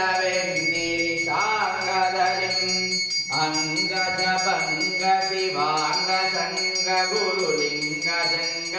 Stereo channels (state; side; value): identical; both; correlation 1.00